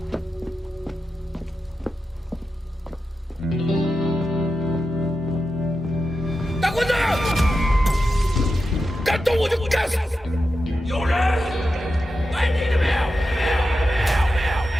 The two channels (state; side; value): normal; both; correlation 0.90